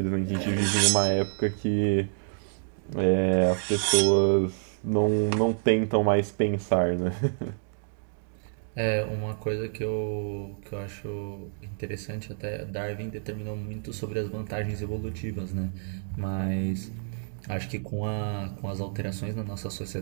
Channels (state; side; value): silent; left; digital silence